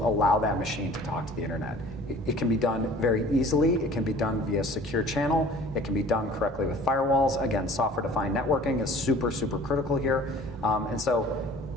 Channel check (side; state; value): both; normal; correlation 0.48